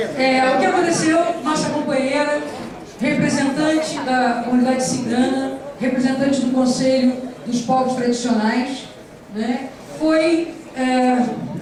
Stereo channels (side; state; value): both; identical; correlation 1.00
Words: O que aconteceu, nossa companheira, representante da comunidade cigana, representante do Conselho dos Povos Tradicionais, né, foi